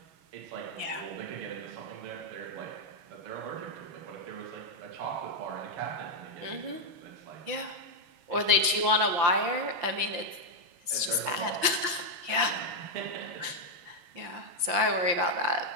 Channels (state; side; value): late; left; 5.9 ms